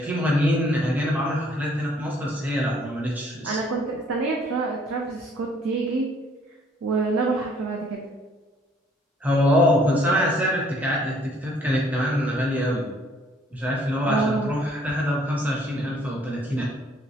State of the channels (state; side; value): normal; both; correlation 0.62